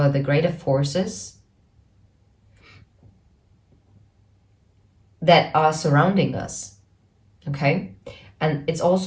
the greater forces that are surrounding us, okay? And it's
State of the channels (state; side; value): identical; both; correlation 1.00